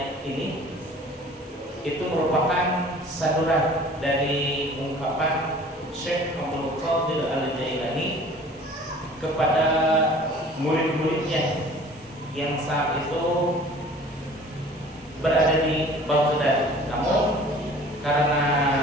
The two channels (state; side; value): normal; both; correlation 0.47